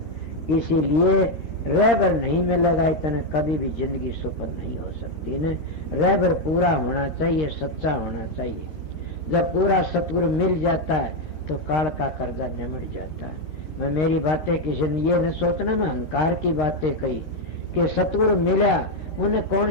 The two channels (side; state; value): right; late; 13 ms